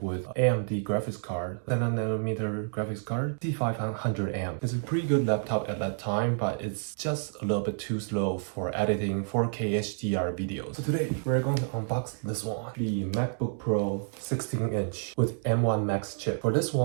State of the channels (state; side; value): silent; left; digital silence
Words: with AMD graphics card, 7nm graphics card, C500M. It's a pretty good laptop at that time, but it's just a little bit too slow for editing 4K HDR videos. So today we're going to unbox this one, the MacBook Pro 16-inch with M1 Max chip. For this